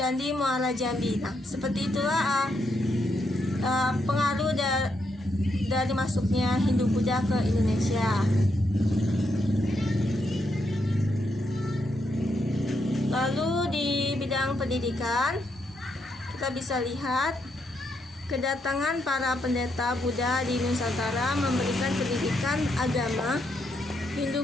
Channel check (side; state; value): both; normal; correlation 0.79